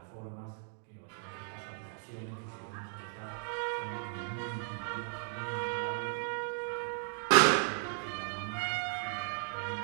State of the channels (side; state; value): left; silent; 54 dB below the other